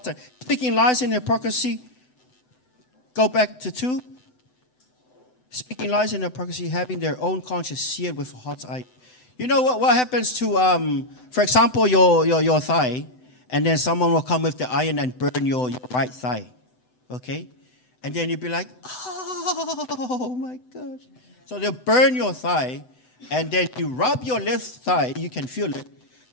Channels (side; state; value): right; late; 7.9 ms